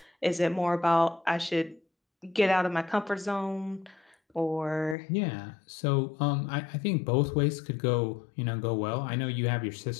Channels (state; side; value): drops out; right; at 5.0 s